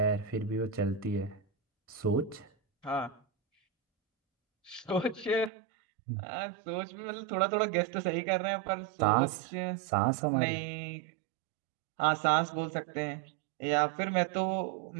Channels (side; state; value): left; drops out; at 5.5 s